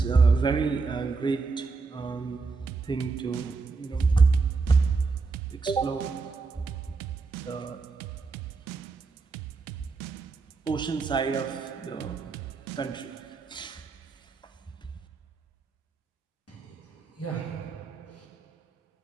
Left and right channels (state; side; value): quieter; left; 4.4 dB